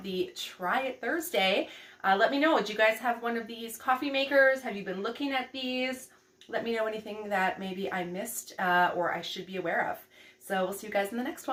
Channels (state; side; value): identical; both; correlation 1.00